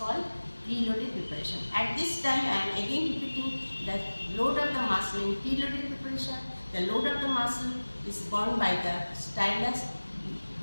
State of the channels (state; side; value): inverted; both; correlation -1.00